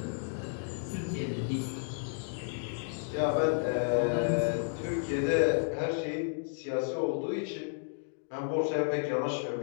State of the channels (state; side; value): silent; right; digital silence